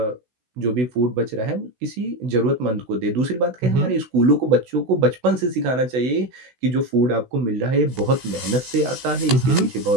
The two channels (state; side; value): late; left; 16 ms